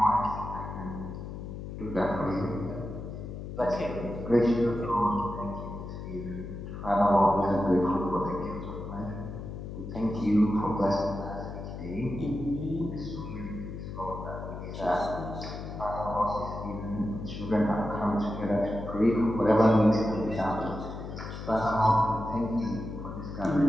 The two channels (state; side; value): noise; left; hum, 8 dB below the sound